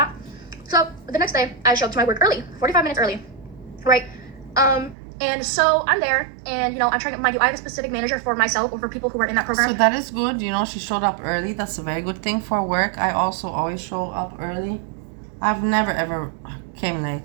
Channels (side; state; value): left; drops out; at 5.0 s